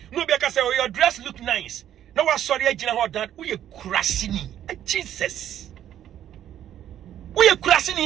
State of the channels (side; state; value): left; quieter; 11.0 dB